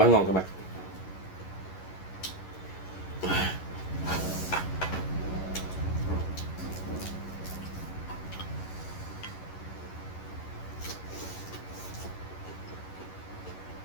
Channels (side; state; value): right; late; 11 ms